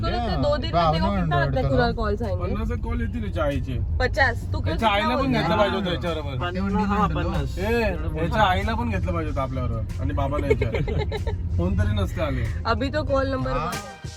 ना 2 दिन में देखो कितना आता है तुला कॉल्स आएंगे। 50 कॉल येतील चायचे। 50 तू याच्या आईला पण घेतलं पाहिजे होतं याच्याबरोबर। याच्या आईला पण घेतलं पाहिजे होतं आपल्याबरोबर आणि बाबाला याच्या फोन तरी नसते आले। अभी तो कॉल नंबर 1 है।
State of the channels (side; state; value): both; identical; correlation 1.00